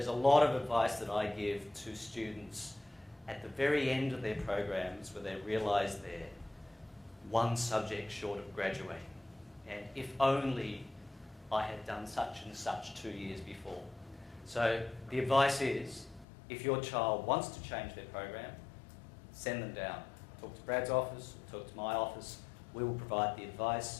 a lot of advice that I give to students at the very end of their programs where they realise they're one subject short of graduating. And if only I had done such and such 2 years before. So the advice is, if your child wants to change their program, send them down. Talk to Brad's office, talk to my office. We will provide the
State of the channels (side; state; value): right; drops out; at 16.2 s